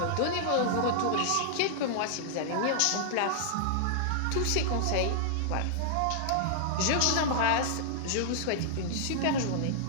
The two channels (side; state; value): both; different; correlation -0.01